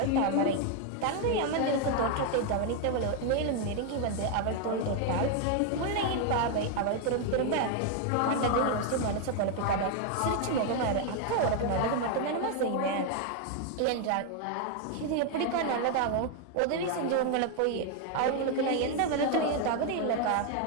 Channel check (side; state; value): both; different; correlation 0.00